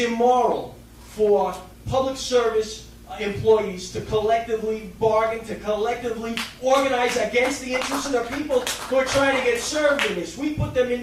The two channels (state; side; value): identical; both; correlation 1.00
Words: for public service employees to collectively bargain, to collectively organize against the interests of the people who are trying to get served in this. We put them in